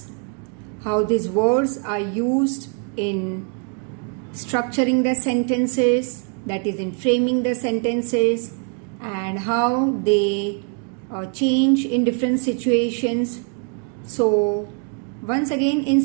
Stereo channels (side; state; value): left; quieter; 39.2 dB